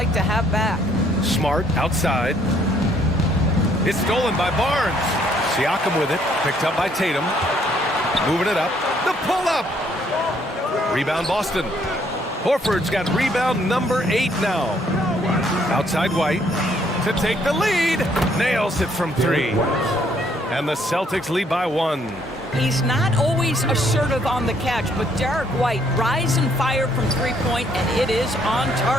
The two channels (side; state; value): both; normal; correlation 0.67